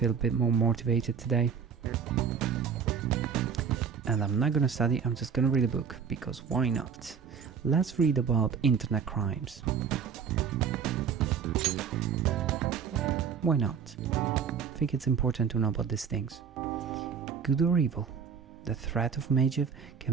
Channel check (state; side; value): quieter; left; 7.0 dB